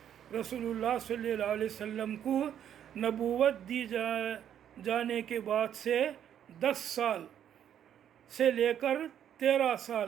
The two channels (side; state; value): left; quieter; 9.7 dB